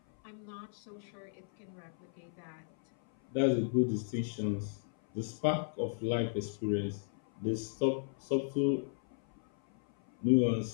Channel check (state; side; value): silent; right; 55 dB below the other